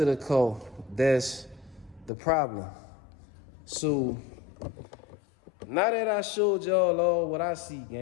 the car that's the problem. So now that I showed y'all all what I see,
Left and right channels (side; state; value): right; drops out; at 2.1 s